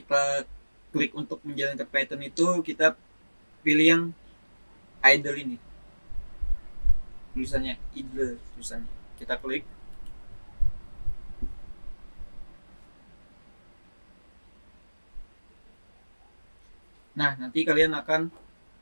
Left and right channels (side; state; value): both; inverted; correlation -1.00